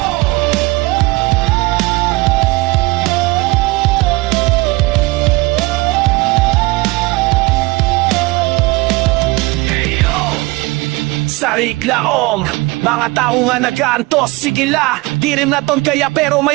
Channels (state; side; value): quieter; left; 23.1 dB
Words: Sariglaong mga tao nga nag-aantos, sige la, di rin naton kaya pero may